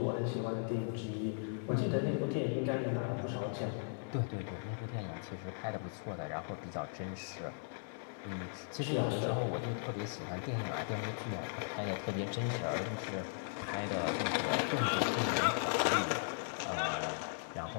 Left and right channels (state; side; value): silent; right; digital silence